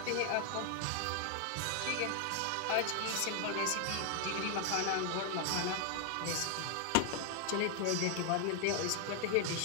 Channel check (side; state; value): both; different; correlation 0.00